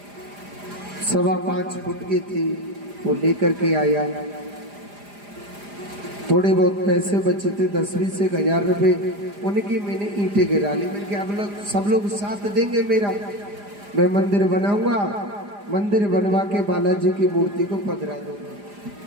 5.25 फुट की थी, वो लेकर के आया। थोड़े बहुत पैसे बचे थे, 10-20 से 1000 रुपए, उनकी मैंने ईंटें गिरा ली। मैंने कहा अब लोग सब लोग साथ देंगे मेरा, मैं मंदिर बनाऊंगा, मंदिर बनवा के बालाजी की मूर्ति को पधरा दूंगा।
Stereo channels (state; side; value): late; left; 4.9 ms